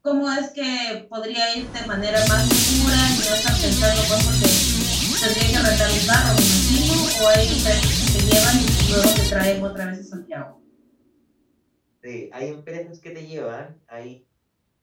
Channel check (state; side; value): identical; both; correlation 1.00